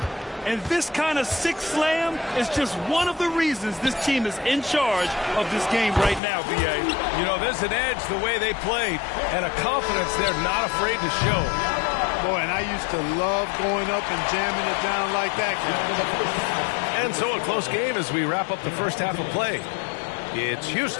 And this kind of sick slam is just one of the reasons this team is in charge of this game right now, B.A. You know, there's an edge the way they played and a confidence they're not afraid to show. Boy, and I used to love going up and jamming it down like that. And so a close game as we wrap up the first half of play. It's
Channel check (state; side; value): drops out; right; at 6.2 s